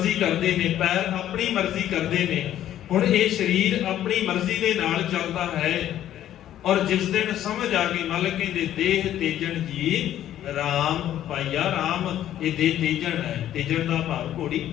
ਕਰਦੇ ਨੇ, ਪੈਰ ਆਪਣੀ ਮਰਜ਼ੀ ਕਰਦੇ ਨੇ। ਹੁਣ ਇਹ ਸਰੀਰ ਆਪਣੀ ਮਰਜ਼ੀ ਦੇ ਨਾਲ ਚੱਲਦਾ ਹੈ। ਔਰ ਜਿਸ ਦਿਨ ਸਮਝ ਆ ਗਈ, ਮਾਲਕ ਕਹਿੰਦੇ ਦੇਹ ਤੇਜਣ ਜੀ ਰਾਮ ਪਾਈਆ। ਰਾਮ ਇਹ ਦੇਹ ਤੇਜਣ ਹੈ। ਤੇਜਣ ਦਾ ਭਾਵ ਘੋੜੀ,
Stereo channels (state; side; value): quieter; right; 11.8 dB